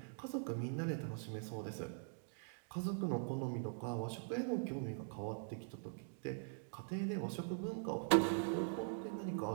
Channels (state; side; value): silent; left; digital silence